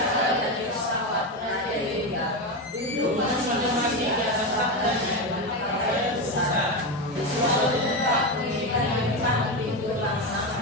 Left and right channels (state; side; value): normal; both; correlation 0.14